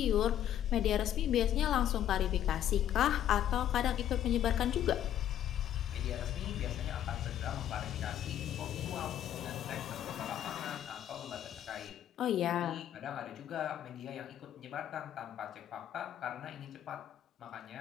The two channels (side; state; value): right; quieter; 11.0 dB